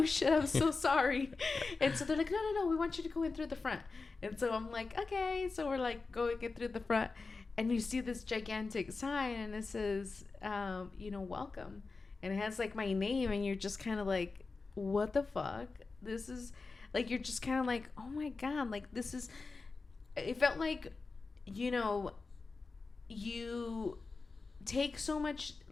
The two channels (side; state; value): right; quieter; 4.1 dB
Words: shit, I'm so sorry. And so they're like, no, we want you to go in through the front. And so I'm like, okay. So we're like going in through the front, and you see this gigantic sign and it says, you know, welcome. And it has like my name, and you're just kind of like, what the fuck? This is like, you're just kind of like, oh my God, like this is, it felt like, you know, you take so much,